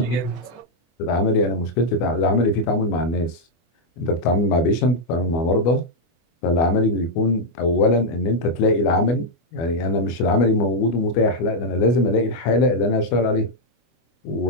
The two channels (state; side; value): late; right; 24 ms